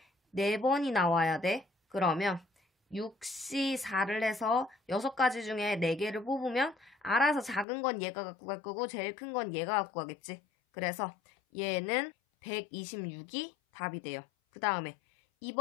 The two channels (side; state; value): right; drops out; at 7.7 s